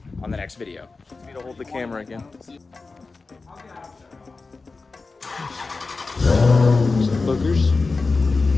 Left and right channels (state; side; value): quieter; right; 4.0 dB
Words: on the next video. Me to hold the camera again. Some boogers.